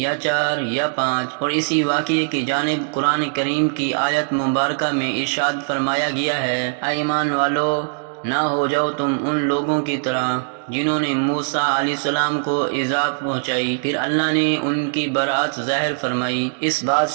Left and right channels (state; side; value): silent; left; digital silence